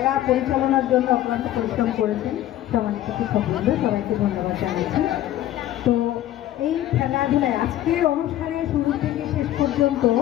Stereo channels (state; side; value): quieter; right; 13.2 dB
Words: পরিচালনার জন্য অক্লান্ত পরিশ্রম করেছেন, সম্মানিত শিক্ষকবৃন্দ, সবাইকে ধন্যবাদ জানাচ্ছি। তো এই খেলাধুলায় আজকের অনুষ্ঠানে শুরু থেকে শেষ পর্যন্ত